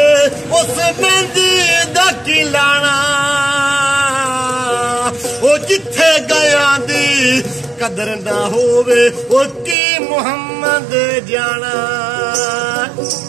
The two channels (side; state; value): left; drops out; at 9.8 s